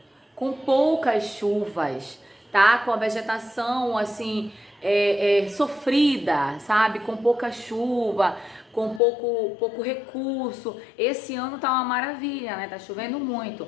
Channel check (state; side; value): drops out; right; at 9.0 s